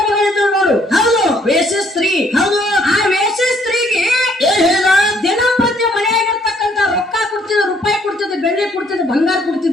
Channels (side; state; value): both; normal; correlation 0.66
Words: ಮಗ ಇದ್ರು ನೋಡು. ಹೌದು. ವೇಶ್ಯ ಸ್ತ್ರೀ. ಹೌದು. ಆ ವೇಶ್ಯ ಸ್ತ್ರೀಗೆ ಏನ್ ಹೇಳ? ದಿನಂಪ್ರತಿ ಮನೆಯಾಗಿರ್ತಕ್ಕಂತ ರೊಕ್ಕ ಕೊಡ್ತಿದ್ದ, ರೂಪಾಯಿ ಕೊಡ್ತಿದ್ದ, ಬೆಳ್ಳಿ ಕೊಡ್ತಿದ್ದ, ಬಂಗಾರ